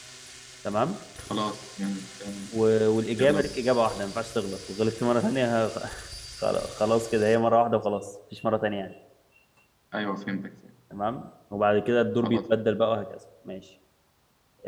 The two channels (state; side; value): identical; both; correlation 1.00